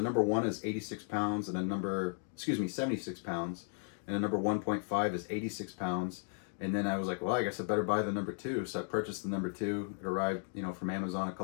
number 1 is 86 pounds, and a number, 76 pounds, and a number 1.5 is 86 pounds. And then I was like, well, I guess I better buy the number 2. So I purchased the number 2. It arrived, you know, from Amazon a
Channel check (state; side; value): silent; right; 54 dB below the other